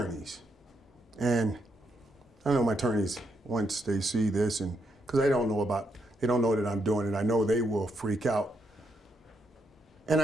And I know my attorneys, once they see this, and because they don't know that I'm doing it, I know they will freak out. And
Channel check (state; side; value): normal; both; correlation 0.78